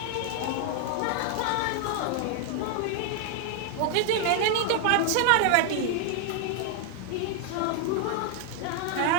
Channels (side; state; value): both; different; correlation 0.00